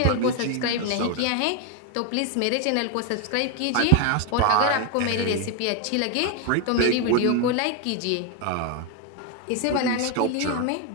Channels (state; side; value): different; both; correlation 0.01